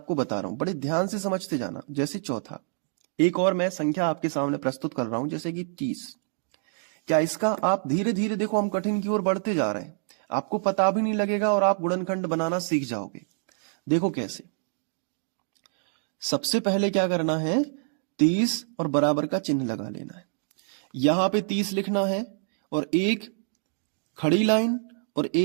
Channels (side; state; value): left; silent; digital silence